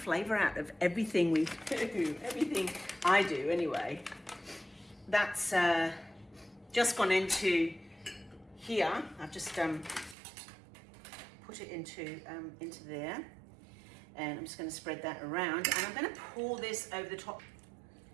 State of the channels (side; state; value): left; drops out; at 10.2 s